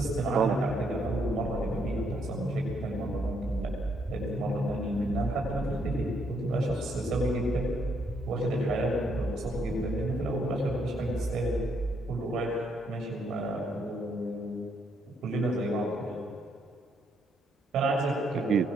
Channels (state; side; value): normal; both; correlation 0.73